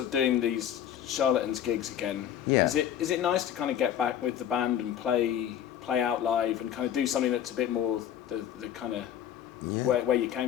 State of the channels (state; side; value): quieter; right; 10.1 dB